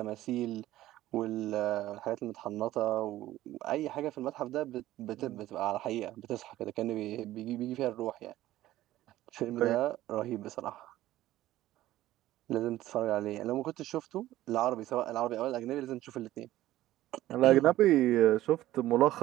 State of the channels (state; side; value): quieter; left; 15.0 dB